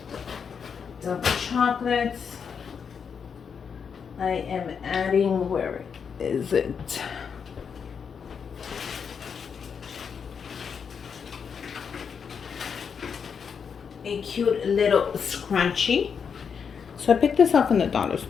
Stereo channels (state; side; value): quieter; right; 6.6 dB